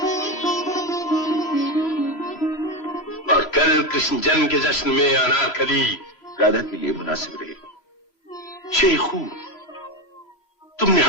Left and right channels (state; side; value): late; right; 3.0 ms